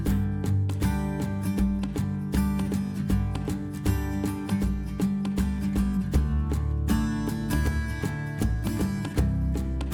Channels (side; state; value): both; identical; correlation 1.00